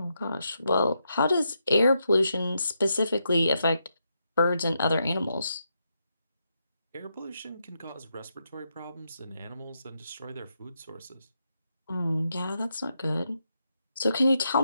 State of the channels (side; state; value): both; inverted; correlation -0.83